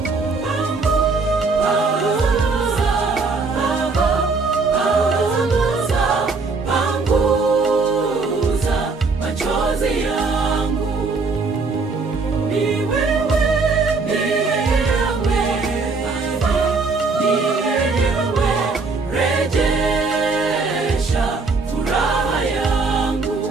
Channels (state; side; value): quieter; left; 4.1 dB